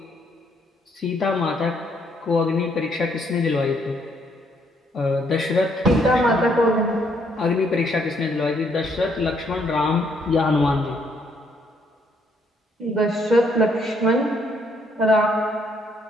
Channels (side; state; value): both; normal; correlation 0.70